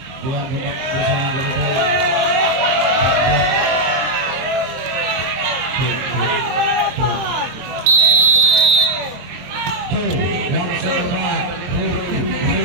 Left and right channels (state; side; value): late; left; 23 ms